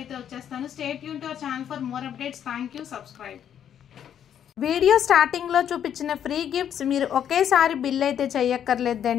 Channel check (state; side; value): quieter; right; 9.4 dB